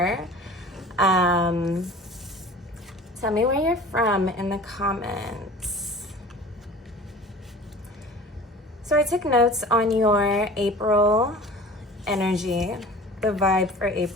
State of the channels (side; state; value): both; normal; correlation 0.42